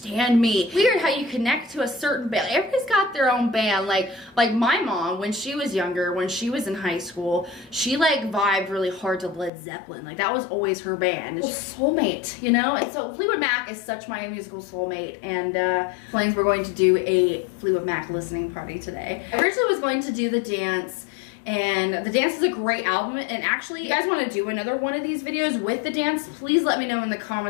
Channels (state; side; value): drops out; right; at 9.5 s